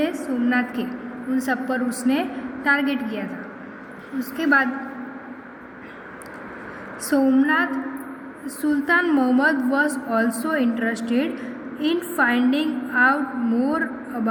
सोमनाथ के, उन सब पर उसने टारगेट किया था। उसके बाद Somnath Sultan Mohammad was also interested in finding out more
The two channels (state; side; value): identical; both; correlation 1.00